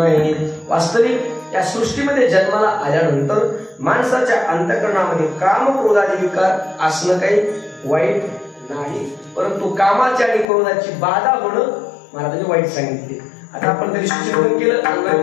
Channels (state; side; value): drops out; right; at 10.5 s